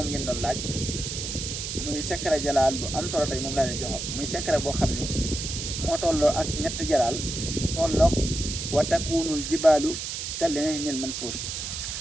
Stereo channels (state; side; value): noise; right; hiss, 5 dB below the sound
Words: ngeen doon laaj muy secret jalaal bu am solo tey moom laa leen jox muy secret boo xam ni moo tolloo ak ñetti jalaal tolloog wa takunul jibaalu kal ahnil manfuus